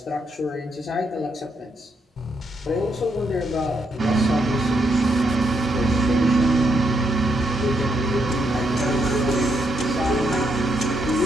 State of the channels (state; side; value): normal; both; correlation 0.78